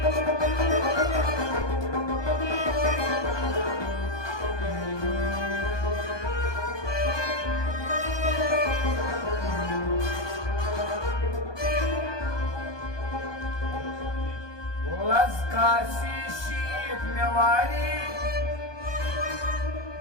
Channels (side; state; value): right; late; 1.2 ms